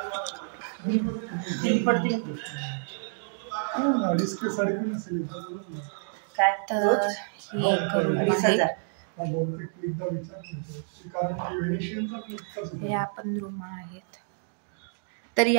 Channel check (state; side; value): silent; left; digital silence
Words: काय तर हे आपण रूम आहेत. तर